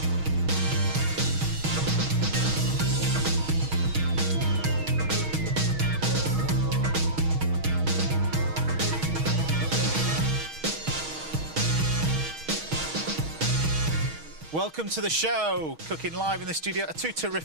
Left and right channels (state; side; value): late; left; 6.3 ms